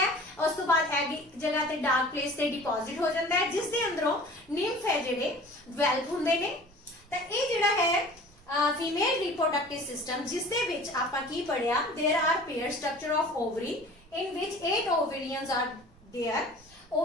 ਉਸ ਤੋਂ ਬਾਅਦ ਐਗ ਇੱਕ ਜਗ੍ਹਾ ਤੇ ਡਾਰਕ ਪਲੇਸ ਤੇ ਡਿਪੋਜ਼ਿਟ ਹੋ ਜਾਂਦਾ ਹੈ ਜਿਸ ਦੇ ਅੰਦਰੋਂ ਨਿੰਫ ਹੈ ਜਿਹੜੇ ਡਿਵੈਲਪ ਹੁੰਦੇ ਨੇ। ਤਾਂ ਇਹ ਜਿਹੜਾ ਹੈ ਫੀਮੇਲ ਰਿਪਰੋਡਕਟਿਵ ਸਿਸਟਮ ਜਿਸ ਦੇ ਵਿੱਚ ਆਪਾਂ ਕੀ ਪੜਿਆ, there are pair structure of ovary in which 8 ovaries are there।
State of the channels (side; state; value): right; noise; rumble, 27 dB below the sound